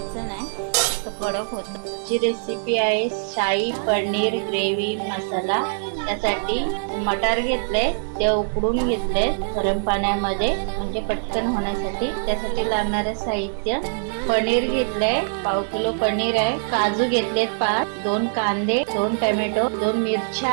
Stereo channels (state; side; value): silent; left; digital silence